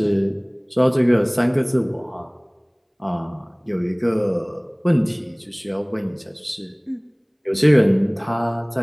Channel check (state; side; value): identical; both; correlation 1.00